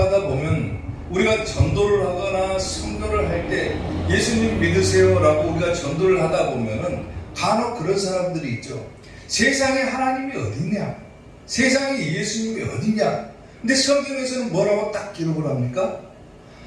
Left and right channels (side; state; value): both; identical; correlation 1.00